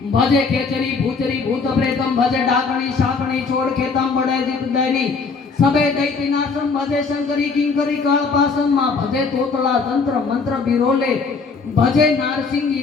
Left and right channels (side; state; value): right; quieter; 4.7 dB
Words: भजे खेचरी भूचरी भूत प्रेतम भजे डाकणी शाकणी छोड़ खेतम बड़े जित दैनी सबे दैत्य नाशम भजे शंकरी किंकरी कालपासम माँ भजे तोतला तंत्र मंत्र बिरोले भजे